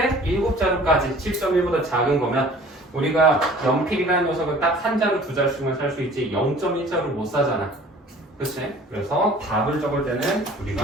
7자루까지 7.1보다 작은 거면 우리가 연필이라는 녀석은 딱 한 자루 두 자루씩만 살 수 있지 0.1자루 못 사잖아. 그치? 그래서 답을 적을 때는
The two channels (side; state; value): both; normal; correlation 0.49